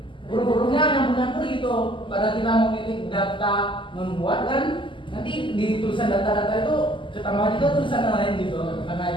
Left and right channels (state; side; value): late; right; 0.25 ms